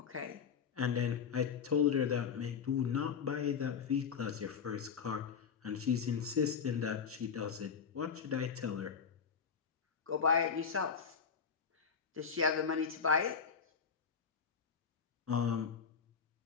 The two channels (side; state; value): right; quieter; 6.5 dB